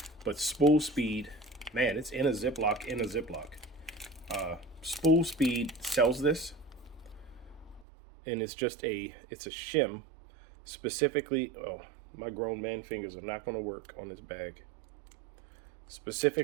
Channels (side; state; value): left; drops out; at 7.9 s